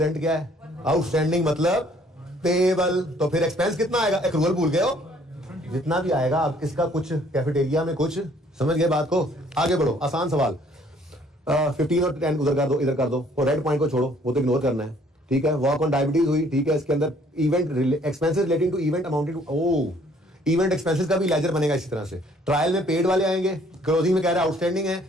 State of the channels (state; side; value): normal; both; correlation 0.60